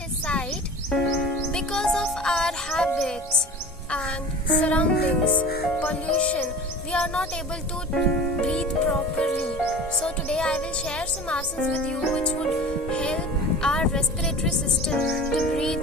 because of our habits and surroundings, pollution, we are not able to breathe properly. So today I will share some asanas with you which would help our respiratory system to breathe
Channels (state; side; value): normal; both; correlation 0.37